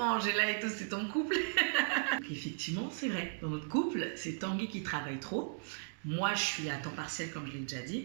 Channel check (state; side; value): silent; left; digital silence